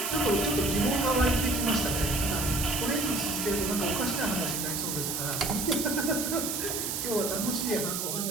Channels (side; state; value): right; noise; hiss, 2 dB below the sound